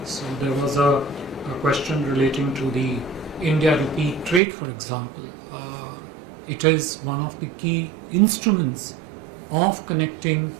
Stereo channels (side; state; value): left; drops out; at 4.4 s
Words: So there was a question relating to the India-Rupee trade, for example. It is one of the key instruments of connecting